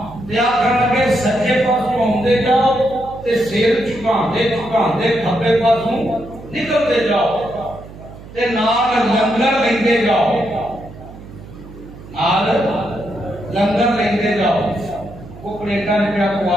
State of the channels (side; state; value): right; noise; hum, 17 dB below the sound